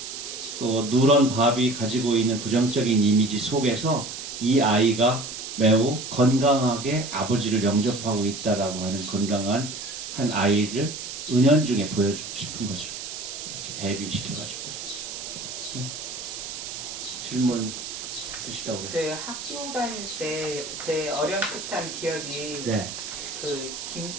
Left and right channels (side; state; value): right; noise; hiss, 8 dB below the sound